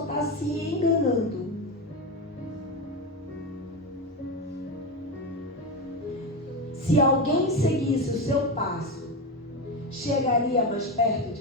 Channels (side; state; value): both; normal; correlation 0.16